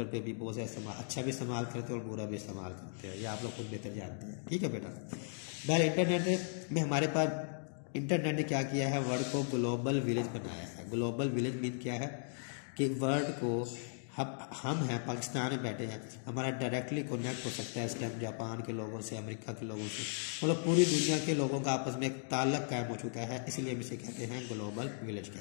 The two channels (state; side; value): silent; right; digital silence